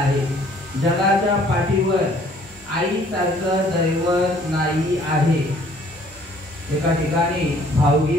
जगाच्या पाठीवर आईसारखं दैवत नाही आहे एका ठिकाणी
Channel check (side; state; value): both; normal; correlation 0.58